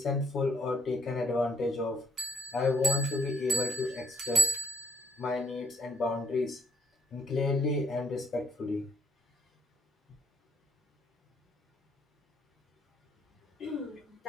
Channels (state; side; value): normal; both; correlation 0.70